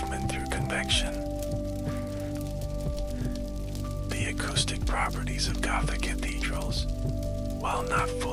through convection. The acoustic properties of Gothic cathedrals, while not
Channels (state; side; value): identical; both; correlation 1.00